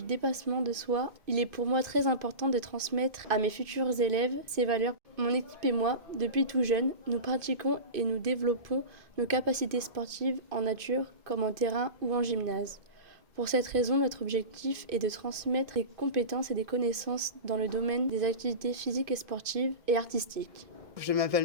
dépassement de soi. Il est pour moi très important de transmettre à mes futurs élèves ces valeurs. Mon équipe et moi, depuis tout jeune, nous pratiquons et nous développons nos capacités sportives en nature comme en terrain ou en gymnase. Pour cette raison, notre objectif est de transmettre des compétences et des connaissances dans le domaine des activités physiques et sportives et artistiques. Je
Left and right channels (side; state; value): left; late; 2.5 ms